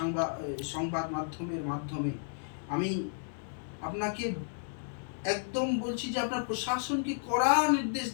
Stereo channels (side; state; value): right; silent; 56 dB below the other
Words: সংবাদ মাধ্যমের মাধ্যমে আমি আপনাকে একদম বলছি যে আপনার প্রশাসনকে কড়া নির্দেশ